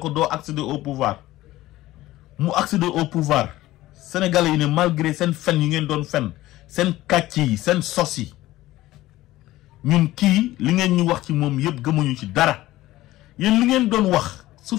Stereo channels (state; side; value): quieter; right; 16.5 dB